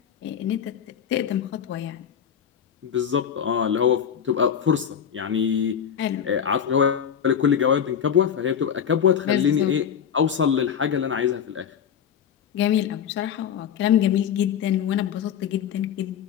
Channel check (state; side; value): quieter; right; 8.3 dB